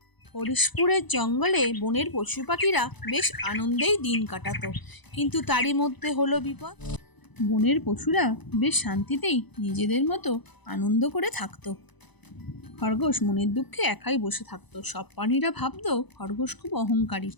হরিশপুরের জঙ্গলে বনের পশু পাখিরা বেশ আনন্দেই দিন কাটাতো, কিন্তু তারই মধ্যে হলো বিপদ। বনের পশুরা বেশ শান্তিতেই নিজেদের মতো আনন্দ করে থাকতো। খরগোশ মনের দুঃখে একাই বসে থাকতো। সব প্রাণীরা ভাবতো খরগোশ খুব অহংকারী,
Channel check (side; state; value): right; late; 1.0 ms